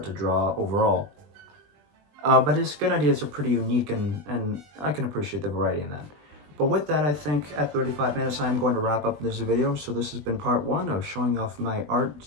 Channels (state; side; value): late; left; 20 ms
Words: to draw overall. But his skin ideas are pretty unique, and I can appreciate the variety in that. But with that, I think at 35 minutes, I'm going to wrap up this video. So this has been part 1 of showing off my Art